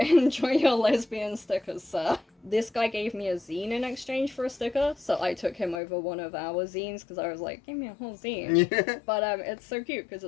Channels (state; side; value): drops out; right; at 5.8 s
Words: enjoy your lesbian stickers, sir. This guy gave me a zine in exchange for a sticker, so I took him over one of our zines because I was like, give me a whole zine. Yeah. But it's so cute because